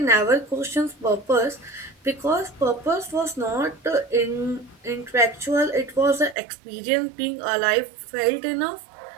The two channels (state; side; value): drops out; left; at 6.4 s